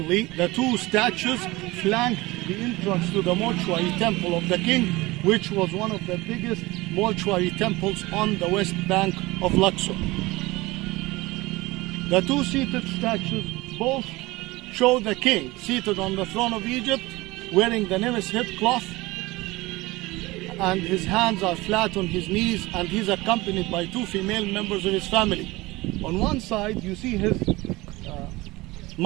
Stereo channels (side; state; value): left; quieter; 21.0 dB